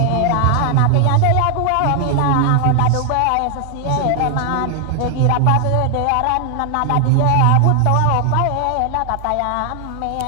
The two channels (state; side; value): different; both; correlation 0.00